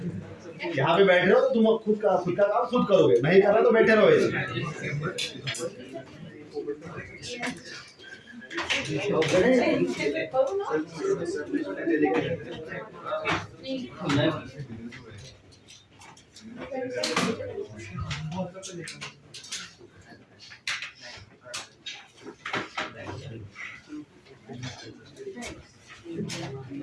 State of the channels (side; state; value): both; identical; correlation 1.00